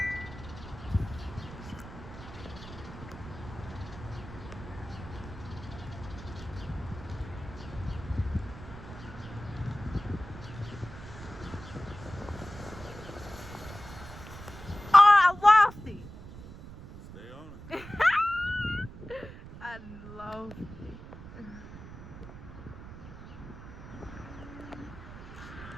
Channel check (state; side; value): noise; right; rumble, 14 dB below the sound